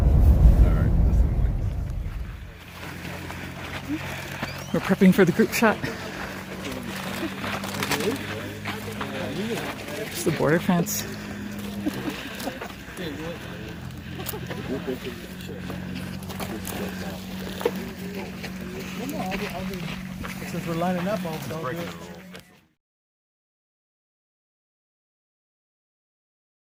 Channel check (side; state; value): both; identical; correlation 1.00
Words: We're prepping for the group shot. It's the border fence. Since we're lining up, I'll do it.